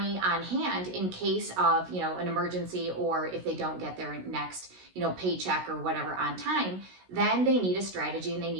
on hand in case of, an emergency, or if they don't get their next, paycheck or whatever on time, then they need a strategy and they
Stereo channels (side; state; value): left; late; 16 ms